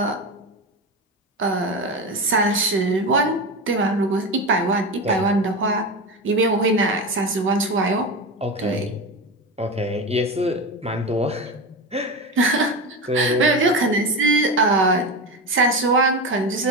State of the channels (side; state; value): both; normal; correlation 0.21